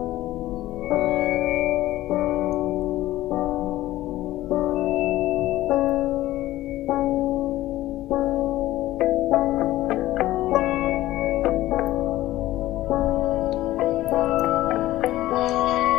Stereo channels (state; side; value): quieter; right; 15.7 dB